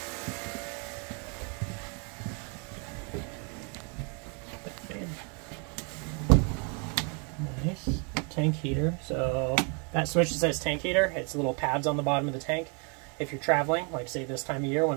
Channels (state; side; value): quieter; left; 36.3 dB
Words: Nice. Tank heater. So that switch that says tank heater, it's little pads on the bottom of the tank. If you're traveling, like say this time of year